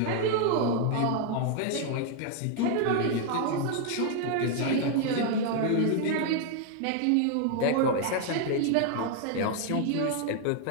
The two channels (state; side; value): different; both; correlation 0.00